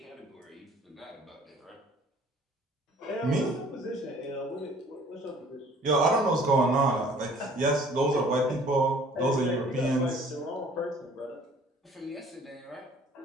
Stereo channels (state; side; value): normal; both; correlation 0.54